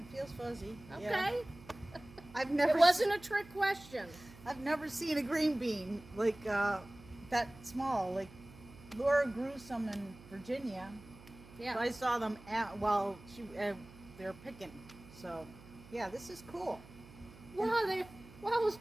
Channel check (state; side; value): noise; right; hum, 20 dB below the sound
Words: feels fuzzy. Okay. Yeah. I've It never wasn't a trick question. I've never seen a green bean like that small. Like Laura grew some in Virginia. Yeah. So I saw them they're picking. So yeah, this is cool. While I was